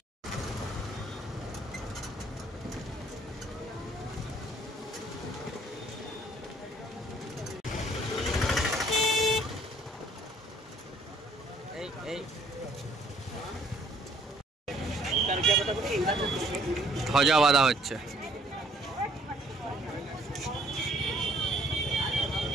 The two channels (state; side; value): normal; both; correlation 0.62